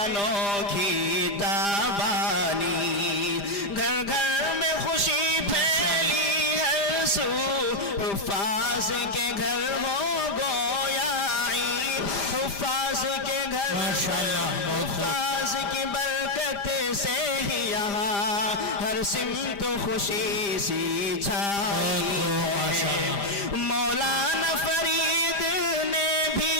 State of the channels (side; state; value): right; late; 5.0 ms